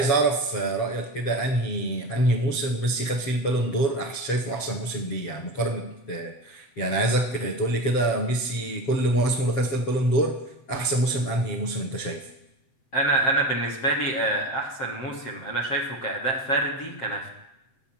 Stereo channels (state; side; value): late; right; 7.8 ms